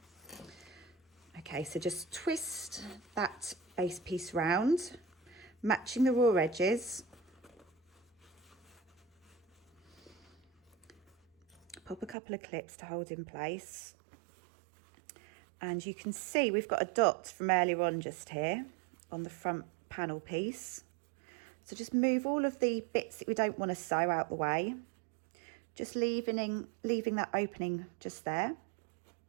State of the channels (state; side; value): drops out; left; at 12.2 s